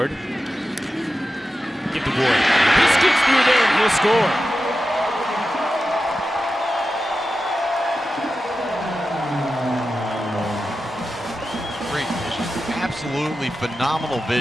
Give to Ward. He scoots through there and he'll score. Great vision. Absolutely phenomenal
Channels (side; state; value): both; normal; correlation 0.92